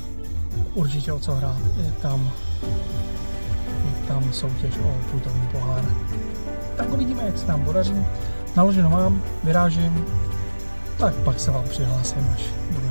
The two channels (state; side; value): inverted; both; correlation -1.00